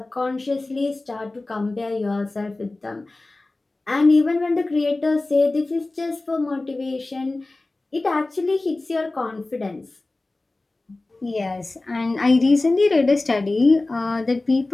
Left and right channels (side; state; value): right; quieter; 3.0 dB